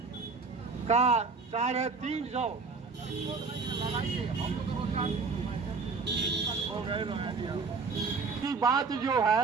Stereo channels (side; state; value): left; quieter; 4.6 dB